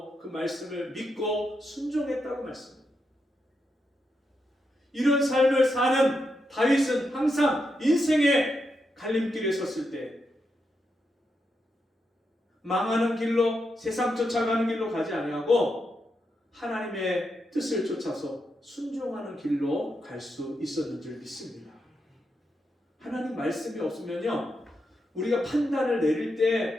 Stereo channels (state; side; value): normal; both; correlation 0.84